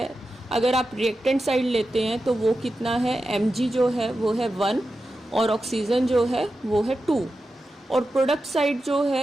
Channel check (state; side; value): normal; both; correlation 0.91